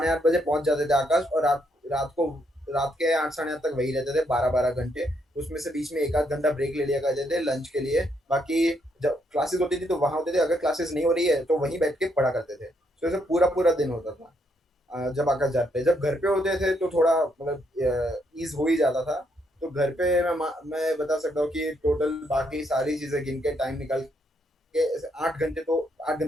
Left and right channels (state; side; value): normal; both; correlation 0.75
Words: 8 बजे पहुंच जाते थे आकाश, और रात के 8 साढ़े 8 तक वही रहते थे, 12-12 घंटे। उसमें से बीच में 1-8 घंटा ब्रेक ले लिया करते थे लंच के लिए। बाकी जब क्लासेस होती थी तो वहां होते थे, अगर क्लासेस नहीं हो रही है तो वहीं बैठ के पढ़ा करते थे। तो ऐसे पूरा दिन होता था जब आकाश जाते। जब घर पे होते थे तो थोड़ा मतलब ईज हो ही जाता था। तो घर पे मैं बता सकता हूँ कि टोटल बाकी सारी चीजें गिन के टाइम निकाल के 8 घंटे